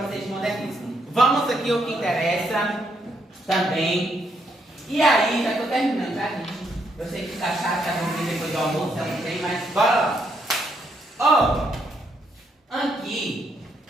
vocês de modernismo. Vamos aqui o que interessa também. E aí, já estou terminando, tá, gente? Eu sei que tá chato, tá vamos vir depois do almoço, eu não sei, mas bora lá. Aqui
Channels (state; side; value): normal; both; correlation 0.75